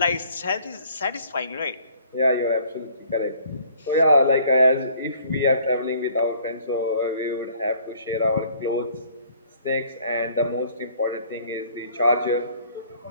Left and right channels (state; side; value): inverted; both; correlation -0.57